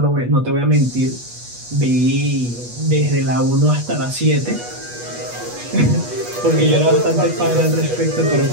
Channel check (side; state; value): left; late; 8.3 ms